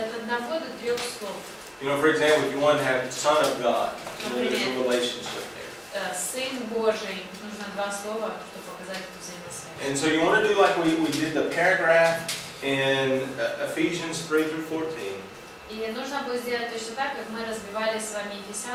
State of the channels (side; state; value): both; identical; correlation 1.00